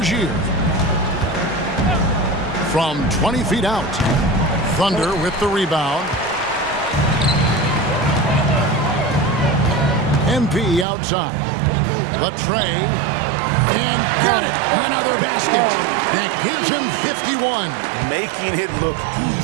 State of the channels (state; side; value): drops out; left; at 10.9 s